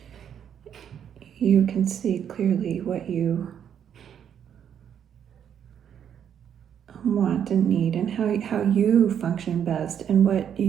you can see clearly what you want and need, and how you function best, and what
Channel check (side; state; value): left; quieter; 8.8 dB